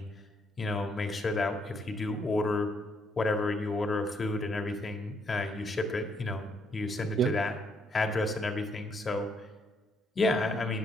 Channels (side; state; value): both; normal; correlation 0.72